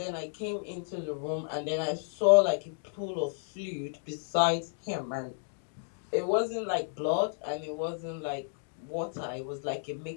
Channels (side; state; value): right; silent; digital silence